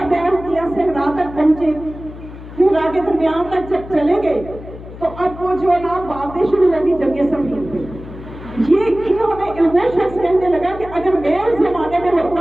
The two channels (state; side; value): noise; left; hum, 14 dB below the sound